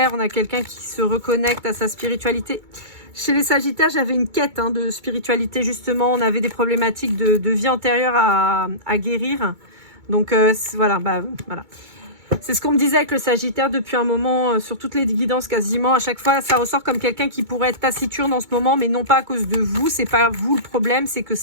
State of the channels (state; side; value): late; left; 2.2 ms